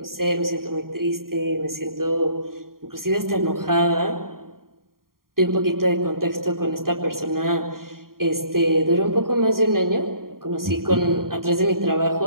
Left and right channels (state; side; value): late; left; 0.92 ms